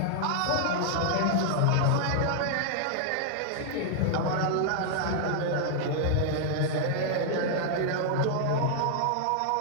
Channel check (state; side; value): different; both; correlation -0.01